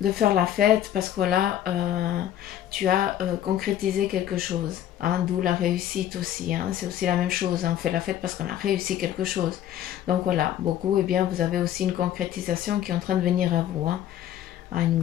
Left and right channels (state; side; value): quieter; right; 11.4 dB